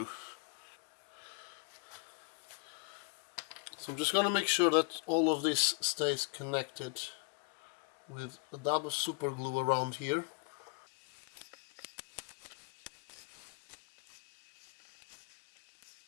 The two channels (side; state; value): right; quieter; 32.9 dB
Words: So I'm just going to make sure that all of this stays connected with a dab of super glue around here.